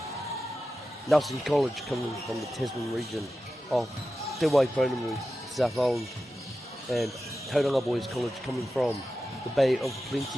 Nelson College coming from the Tasman region of Te Waipounamu, South Island, and Tauranga Boys College coming from the Bay of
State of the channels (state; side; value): normal; both; correlation 0.92